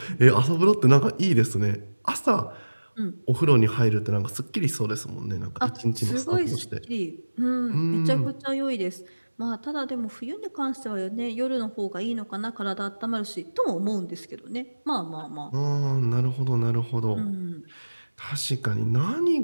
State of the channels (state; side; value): inverted; both; correlation -1.00